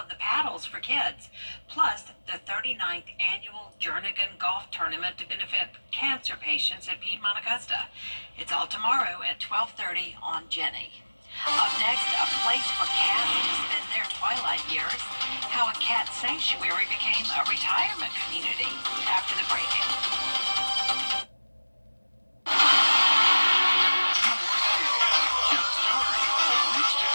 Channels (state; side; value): inverted; both; correlation -1.00